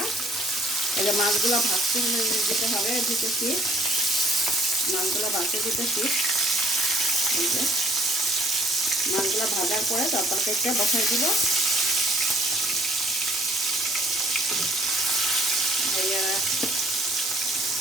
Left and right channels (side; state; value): both; normal; correlation 0.59